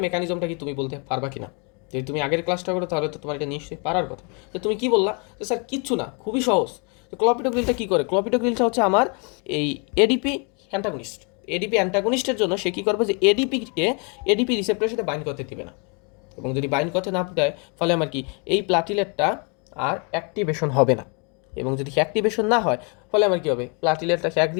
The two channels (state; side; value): quieter; right; 34.8 dB